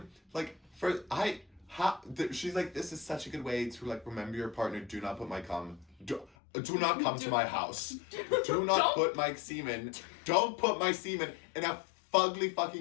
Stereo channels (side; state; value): right; drops out; at 6.3 s